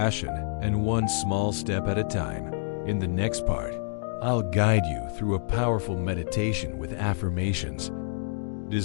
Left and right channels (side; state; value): right; silent; digital silence